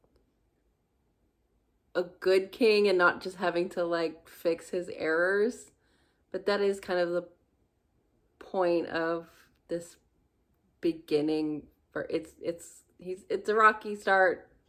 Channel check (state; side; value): identical; both; correlation 1.00